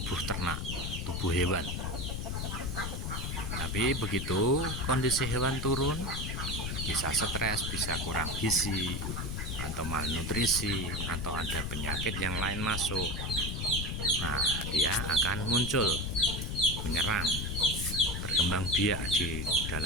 ternak, tubuh hewan. Tapi begitu kondisi hewan turun, bisa stres, bisa kurang gizi, atau malnutrisi, atau ada penyakit yang lain masuk. Nah, dia akan muncul, menyerang, berkembang biak di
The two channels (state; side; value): noise; left; rumble, 3 dB below the sound